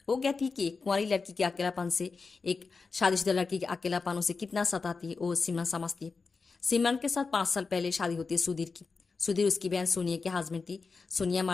वो कहती है कि एक कुंवारी लड़की के अकेलापन से एक शादीशुदा लड़की के अकेलापन उसे कितना सताती है वो सिमरन समझती है। सिमरन के साथ 5 साल पहले शादी होती है सुधीर की। सुधीर उसकी बहन सोनिया के हस्बैंड थी। सोनिया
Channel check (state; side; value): quieter; right; 4.6 dB